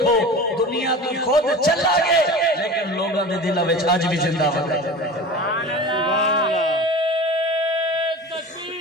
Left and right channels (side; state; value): both; normal; correlation 0.35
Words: دنیا تو خود چلا گئے لیکن لوگوں دے دلوں وچ اج بھی زندہ